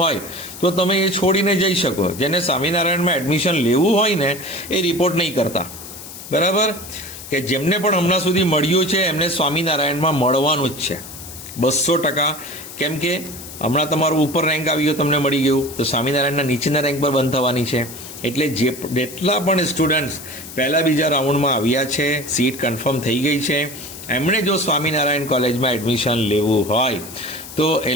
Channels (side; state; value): left; noise; hiss, 13 dB below the sound